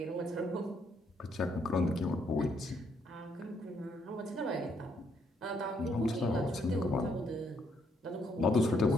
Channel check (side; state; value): both; normal; correlation 0.72